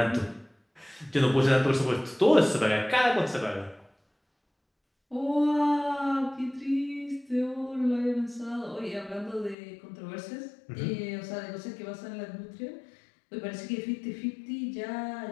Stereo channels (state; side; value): drops out; right; at 9.6 s